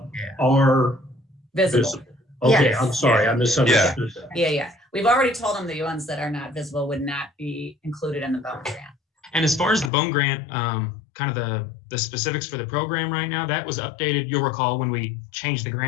Yeah. are Visible. visible. Okay, Yes. I'm sorry, I misunderstood that. Yeah. We've already told them the ones that are not visible would not be included in the Bone Grant. And as far as the Bone Grant, kind of the specifics for the program right now, that was updated. You'll recall when we changed the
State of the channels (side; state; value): right; drops out; at 9.9 s